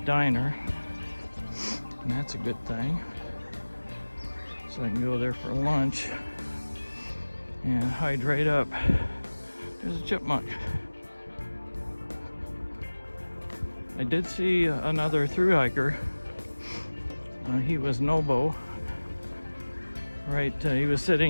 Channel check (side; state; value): both; inverted; correlation -1.00